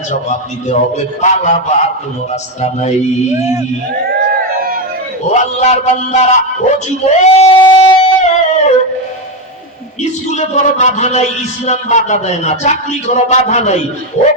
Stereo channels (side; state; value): both; normal; correlation 0.09